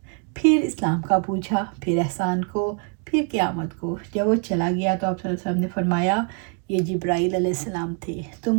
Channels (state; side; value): quieter; left; 39.0 dB